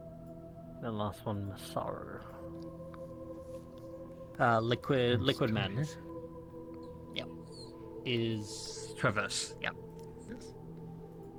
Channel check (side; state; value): both; identical; correlation 1.00